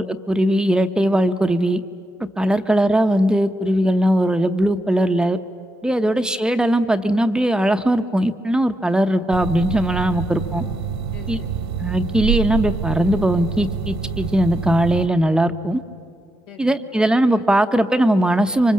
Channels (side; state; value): both; normal; correlation 0.84